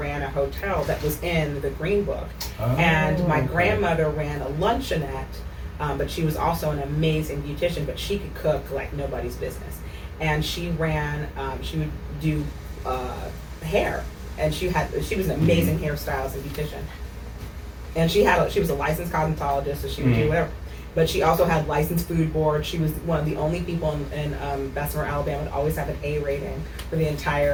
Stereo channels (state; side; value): identical; both; correlation 1.00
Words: a hotel that was in The Green Book. And my grandmother ran a luncheonette, but she was also an amazing beautician, but she could cook like nobody's business. And she would do hair, and she was an amazing hairstylist and beautician. And she was a licensed cosmetologist, so she would do whatever. But she also had licensed food board. She was one of the only people in Bessemer, Alabama, to always have an A rating for the